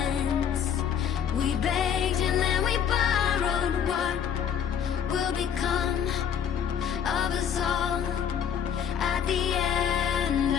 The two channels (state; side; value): quieter; right; 8.3 dB